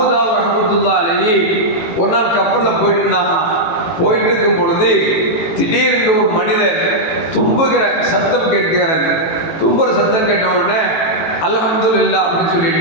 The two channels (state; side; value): late; right; 18 ms